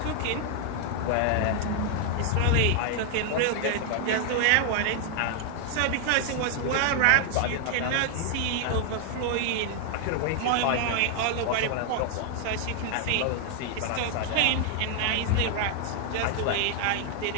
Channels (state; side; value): different; both; correlation 0.00